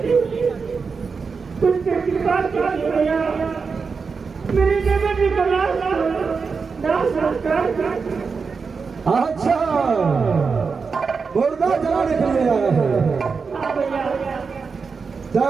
कुछ कृपा कीजिए भैया। मेरे देवी को दास संस्कार कर। अच्छा, मुर्दा जलाने के लिए आया है।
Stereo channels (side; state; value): left; quieter; 5.1 dB